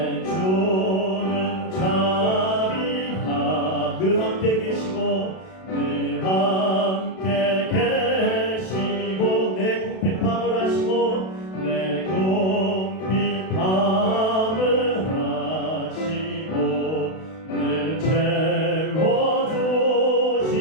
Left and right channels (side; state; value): right; late; 32 ms